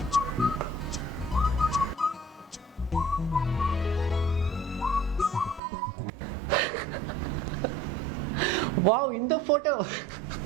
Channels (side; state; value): left; drops out; at 5.6 s